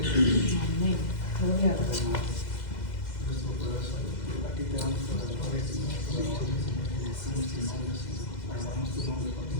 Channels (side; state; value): right; late; 2.0 ms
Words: Amén. Gloria a Dios. Nuestro corazón, aquí te damos toda la gloria, Señor, toda la honra, Señor, te decimos tu nombre, Señor, alabamos tu nombre por